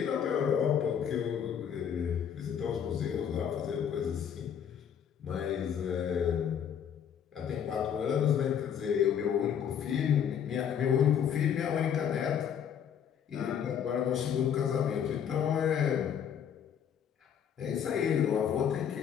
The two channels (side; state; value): right; quieter; 8.4 dB